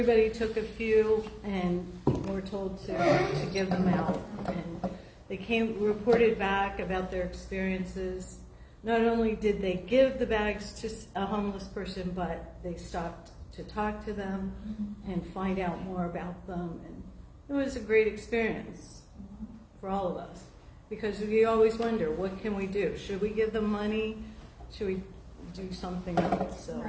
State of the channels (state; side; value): identical; both; correlation 1.00